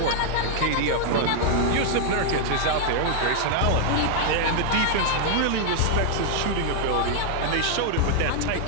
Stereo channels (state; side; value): different; both; correlation 0.00